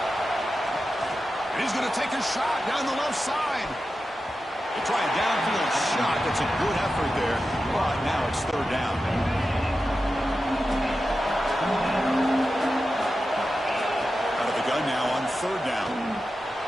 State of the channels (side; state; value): both; normal; correlation 0.92